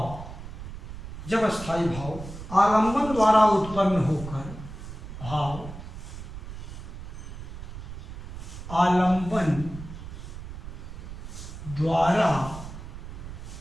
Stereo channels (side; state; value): right; noise; rumble, 10 dB below the sound